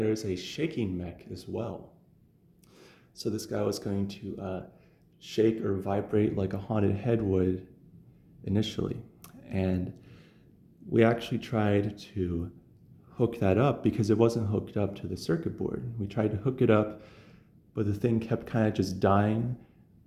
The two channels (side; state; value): both; identical; correlation 1.00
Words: a shaking mech as well. So this guy was going to shake or vibrate like a haunted head would initially. And we actually tried to hook that up because it wasn't hooked up to the circuit board. We tried to hook it up, but the thing kept kind of just dying.